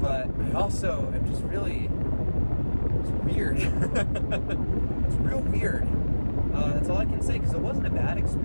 I also am just really. It's weird. It's real weird. That's all I can say, because it wasn't a bad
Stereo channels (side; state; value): both; inverted; correlation -1.00